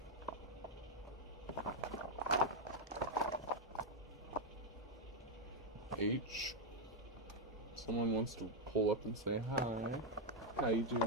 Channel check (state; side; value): normal; both; correlation 0.01